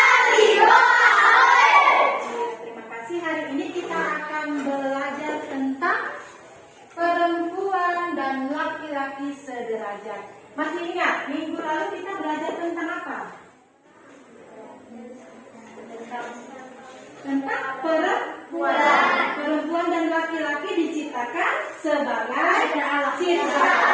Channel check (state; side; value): identical; both; correlation 1.00